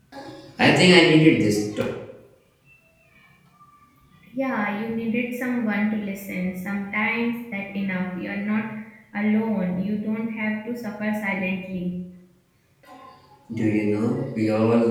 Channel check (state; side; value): identical; both; correlation 1.00